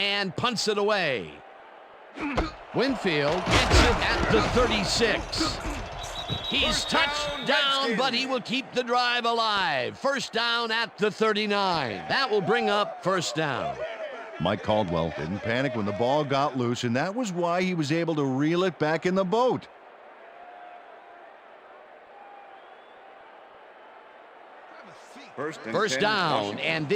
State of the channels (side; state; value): both; identical; correlation 1.00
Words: punts it away. Winfield gets it at the 36. He's touched down, but he will keep the drive alive. 1st down at the 39. That will bring up 1st down. Mike Caldwell didn't panic when the ball got loose, and that was why he was able to reel it back in the boat. First down, and